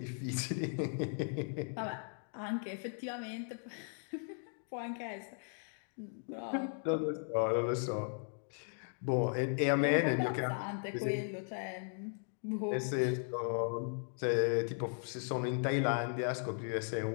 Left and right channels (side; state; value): right; silent; 53 dB below the other